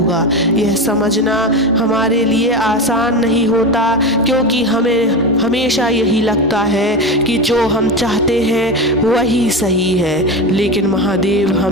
यह समझना हमारे लिए आसान नहीं होता, क्योंकि हमें हमेशा यही लगता है कि जो हम चाहते हैं वही सही है। लेकिन महादेव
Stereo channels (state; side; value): normal; both; correlation 0.21